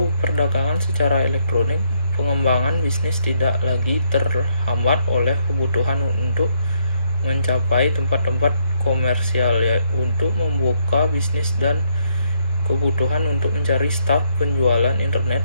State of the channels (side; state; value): both; inverted; correlation -0.73